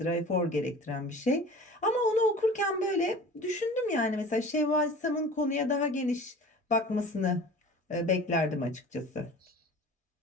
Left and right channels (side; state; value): both; normal; correlation 0.40